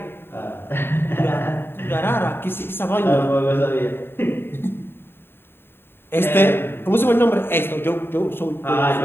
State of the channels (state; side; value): late; right; 0.11 ms